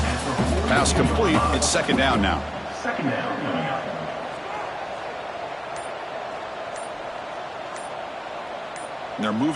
Pass complete. It's second down now. Second down coming up. And they're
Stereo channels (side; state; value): both; identical; correlation 1.00